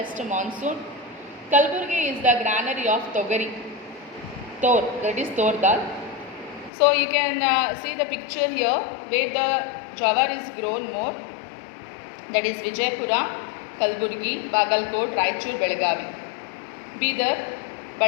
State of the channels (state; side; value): drops out; right; at 6.7 s